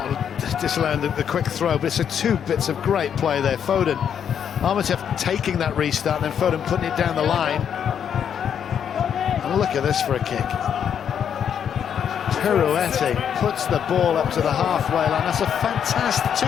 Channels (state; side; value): quieter; right; 8.4 dB